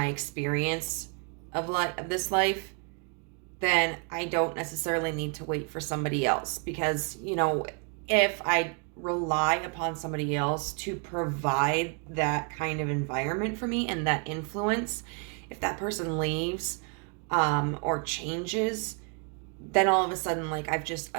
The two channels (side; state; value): left; quieter; 37.8 dB